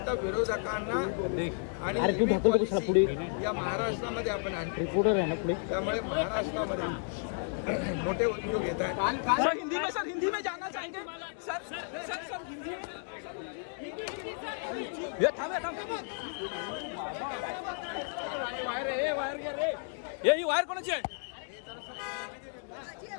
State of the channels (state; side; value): silent; right; 56 dB below the other